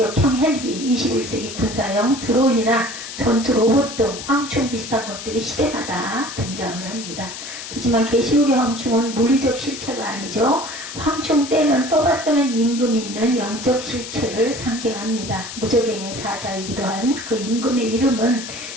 헬기, 21세기 군사형 드론이나 전투 로봇 등 황충 비슷한 것들이 시대마다 등장을 합니다. 그렇지만 계시록의 황충은 물리적 실체가 아니죠. 황충 때는 떠받드는 임금 있는 영적 실체를 상징합니다. 무적행의 사자이기도 한 그 임금의 이름은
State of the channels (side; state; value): left; noise; hiss, 10 dB below the sound